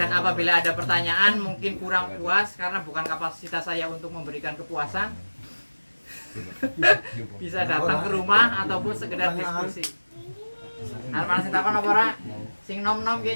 apabila ada pertanyaan mungkin kurang puas karena bukan kapasitas saya untuk memberikan kepuasan. Bisa datang ke rumah ataupun sekedar diskusi. Arep sing takon apa ora? Sing nom-nom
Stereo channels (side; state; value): both; inverted; correlation -1.00